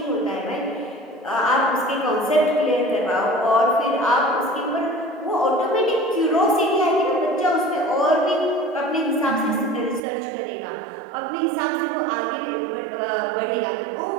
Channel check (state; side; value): drops out; left; at 10.0 s